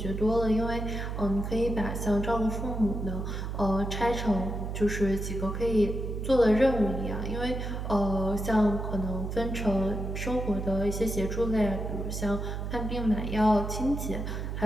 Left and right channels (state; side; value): noise; right; hum, 4 dB below the sound